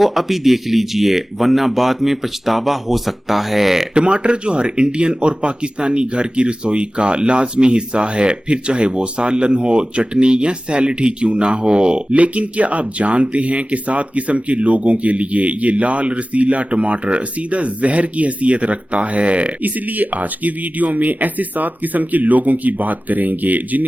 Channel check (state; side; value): normal; both; correlation 0.96